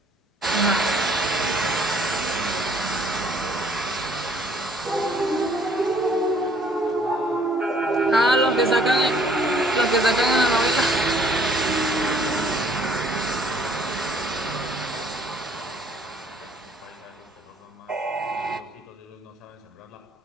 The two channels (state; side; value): normal; both; correlation 0.61